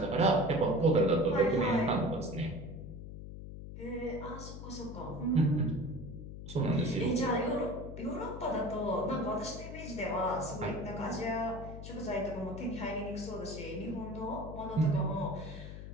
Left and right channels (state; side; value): noise; left; hum, 10 dB below the sound